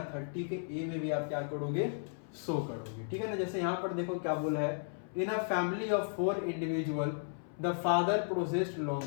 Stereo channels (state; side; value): silent; right; 55 dB below the other